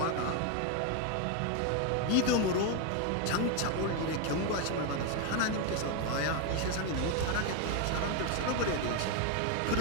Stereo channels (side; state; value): both; different; correlation 0.01